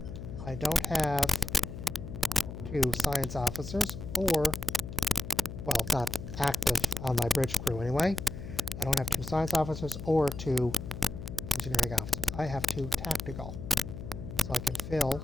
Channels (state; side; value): noise; left; hum, 9 dB below the sound